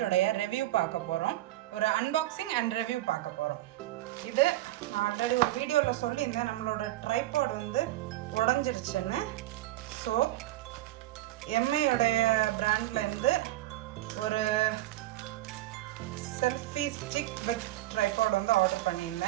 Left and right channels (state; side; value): quieter; left; 15.8 dB